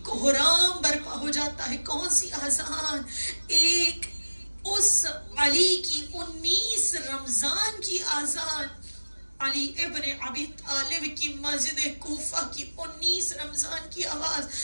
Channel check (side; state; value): both; inverted; correlation -1.00